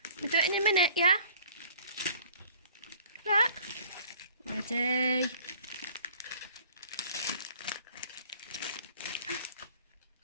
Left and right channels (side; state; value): both; inverted; correlation -0.51